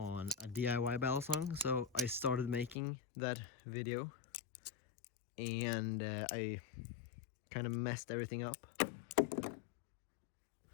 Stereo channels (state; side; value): drops out; right; at 2.8 s